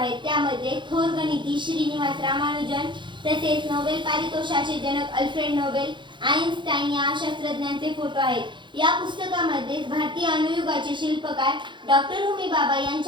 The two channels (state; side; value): late; left; 0.23 ms